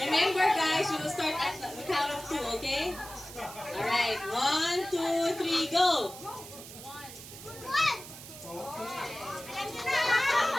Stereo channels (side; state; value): right; noise; hiss, 14 dB below the sound